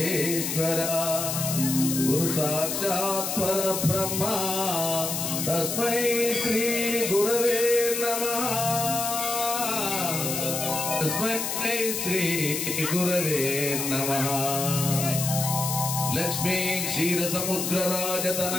గురు సాక్షాత్ పరబ్రహ్మ తస్మై శ్రీ గురవే నమః. తస్మై శ్రీ గురవే నమః. లక్ష్మీ క్షీర సముద్ర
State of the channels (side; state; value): left; noise; hiss, 2 dB below the sound